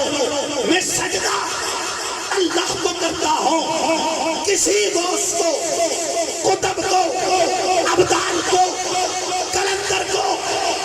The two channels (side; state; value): both; identical; correlation 1.00